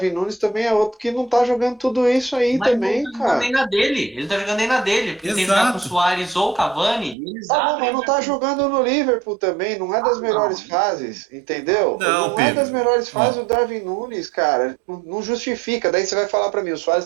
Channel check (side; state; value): left; drops out; at 7.2 s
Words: Nunes também é outro que não tá jogando tudo isso aí Mas ele não também, tá jogando nem cara. na dele. Ele não tá jogando nem na dele. Porque tem que jogar com o Exato. Soares ou o Cavani, e eles Tá bom, abrem mas o não tá jogo. jogando no Liverpool também, não é das melhores Não. fases, entendeu? Não, Não é das Pedro. melhores fases Ó, o Darwin Nunes, cara. Não justifica. Daí você vai falar pra mim, o Suárez